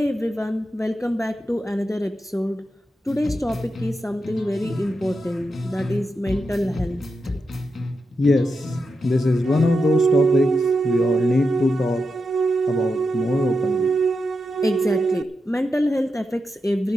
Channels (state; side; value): normal; both; correlation 0.87